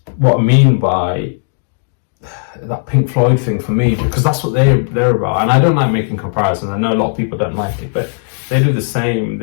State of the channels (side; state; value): right; silent; digital silence